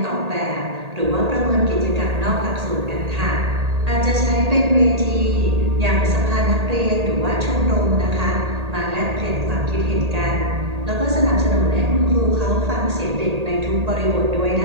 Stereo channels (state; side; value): late; left; 1.8 ms